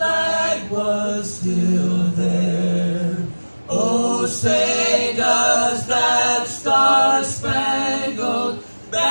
was still there. Oh, say does that star-spangled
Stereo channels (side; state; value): both; inverted; correlation -1.00